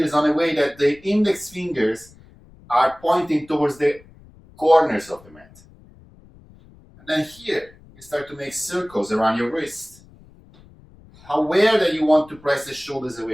on a way that the index fingers are pointing towards the corners of the mat. And then here, you start to make circles around your wrist. Aware that you want to press the shoulders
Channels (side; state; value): left; noise; rumble, 25 dB below the sound